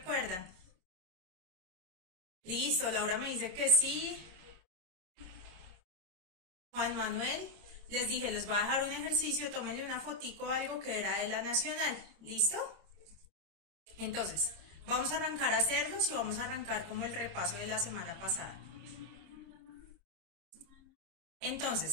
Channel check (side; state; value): left; late; 26 ms